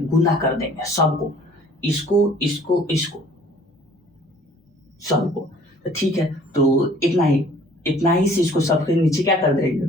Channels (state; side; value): normal; both; correlation 0.54